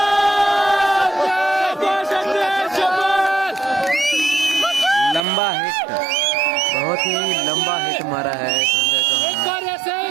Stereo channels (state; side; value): drops out; left; at 5.2 s